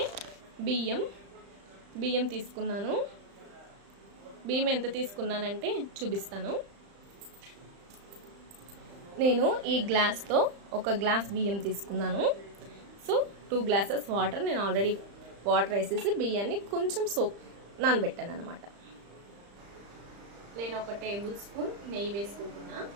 బియ్యం తీసుకున్నాను. బియ్యం ఎంత తీసుకున్నానంటే చూపిస్తాను. నేను ఈ గ్లాస్తో 1 గ్లాస్ బియ్యం తీసుకున్నాను. సో 2 గ్లాసెస్ వాటర్, నేను ఆల్రెడీ వాటర్ వేసేసి బియ్యాన్ని కొంచెం నానబెట్టాను అనమాట. నేను 1 టేబుల్ స్పూన్ నెయ్యి వేసుకుంటున్నా.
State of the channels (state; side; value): late; left; 35 ms